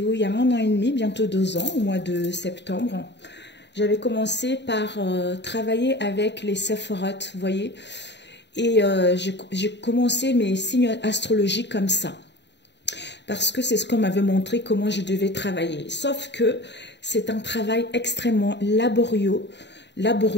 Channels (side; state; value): right; late; 0.51 ms